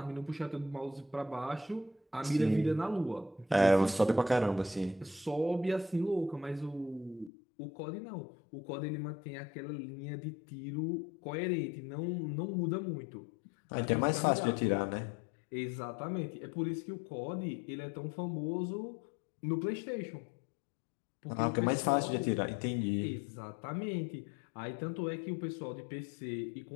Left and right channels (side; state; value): right; drops out; at 7.3 s